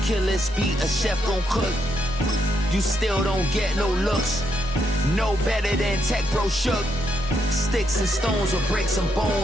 kill this beat, a chef gon' cook. You still don't get no looks. No better than Tech Bro Shook. Sticks and stones will break some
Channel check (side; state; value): both; normal; correlation 0.78